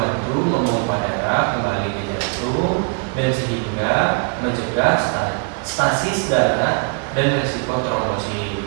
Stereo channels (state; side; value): quieter; left; 36.8 dB